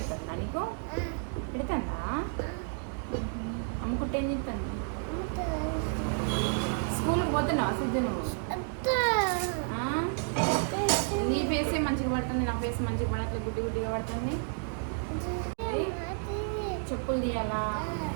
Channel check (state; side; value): silent; left; 57 dB below the other